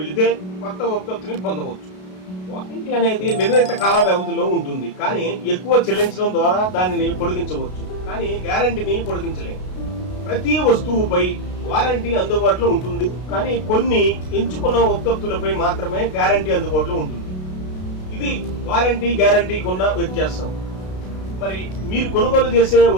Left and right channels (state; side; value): late; right; 32 ms